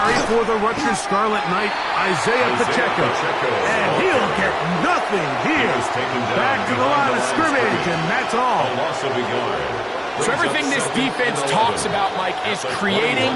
for the Rutgers Scarlet Knight, Isaiah Pacheco. And he'll get nothing here. Back to the line of scrimmage, and that's all. So everything this defense talks about, Mike, is creating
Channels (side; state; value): both; identical; correlation 1.00